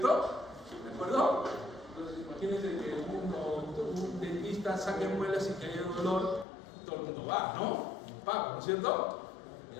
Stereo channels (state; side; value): drops out; right; at 6.5 s